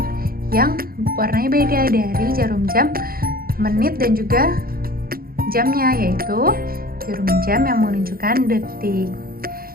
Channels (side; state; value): left; late; 0.43 ms